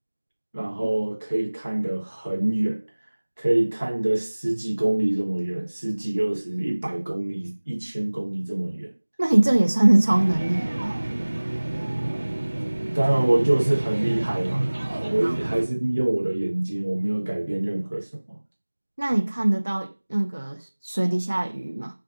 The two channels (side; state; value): both; inverted; correlation -1.00